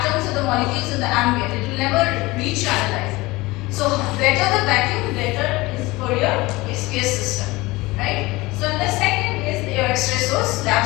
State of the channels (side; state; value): right; quieter; 21.4 dB